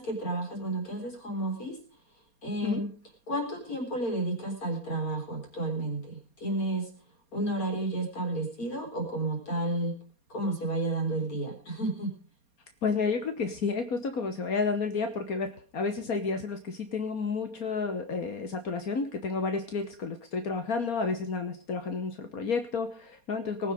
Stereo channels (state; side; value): late; right; 4.3 ms